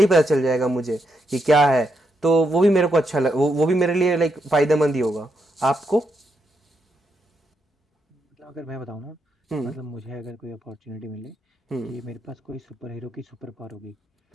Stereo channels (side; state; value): both; normal; correlation 0.81